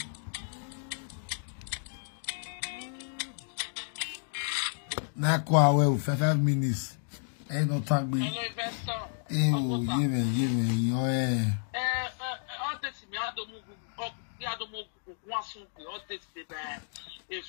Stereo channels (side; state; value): right; silent; digital silence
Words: Now, 5 minutes. Ain't no time, baby. Hello, investor. Give me. Oh, yeah. All this, me, I don't move. One soon, all this, the